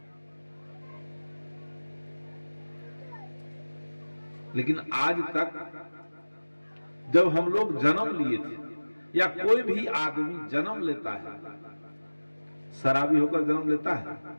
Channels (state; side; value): inverted; both; correlation -1.00